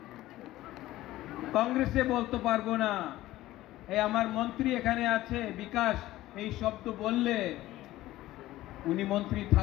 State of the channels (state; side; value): quieter; right; 16.0 dB